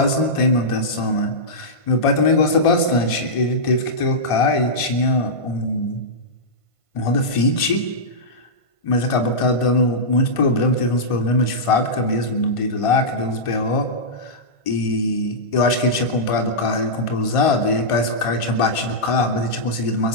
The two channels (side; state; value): right; late; 1.5 ms